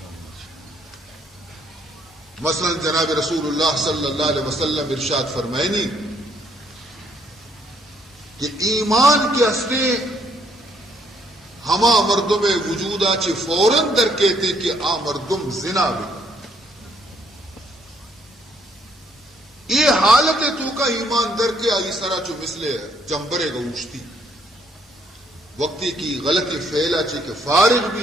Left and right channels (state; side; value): normal; both; correlation 0.68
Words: مثلا جناب رسول اللہ صلی اللہ علیہ وسلم ارشاد فرمائنی کہ ایمان کے ہستے ہما مردم وجودہ چی فوراً در کہتے کہ آ مردم زنا بھی یہ حالت تو کا ایمان در کے آئی سرا چو مثلے جمبرے گا اوشتی وقتی کی غلطی فیلا چی کہ فارغ بھی